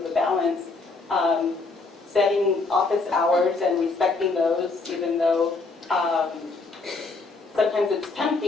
the balance. setting office hours and respecting those, even though sometimes it's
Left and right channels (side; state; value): right; quieter; 3.8 dB